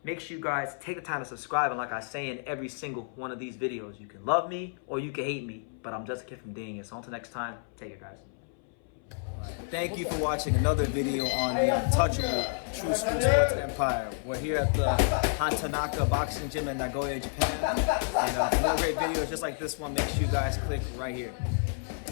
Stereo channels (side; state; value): right; silent; 58 dB below the other